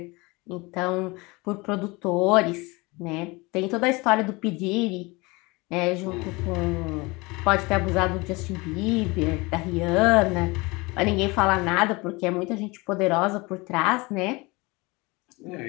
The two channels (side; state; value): right; quieter; 24.8 dB